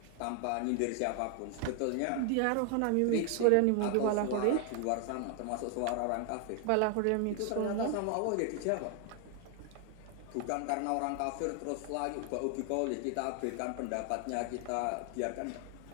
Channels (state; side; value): different; both; correlation 0.00